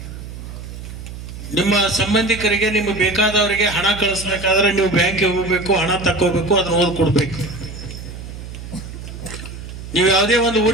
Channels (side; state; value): right; noise; hum, 11 dB below the sound